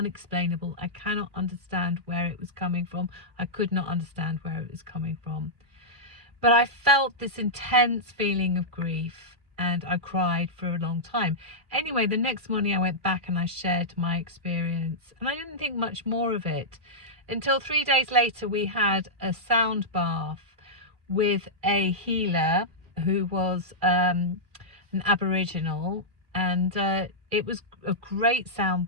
I cannot understand where it was coming from. I could not understand where it was coming from. But I felt this intense feeling of grief, and I cried for a long time. Anyway, the next morning I went back and I shared my experience, and I didn't think much more of it until 3 days later we had a sound bath with a healer who was an Aboriginal, and it was a great sound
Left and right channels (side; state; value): left; late; 2.4 ms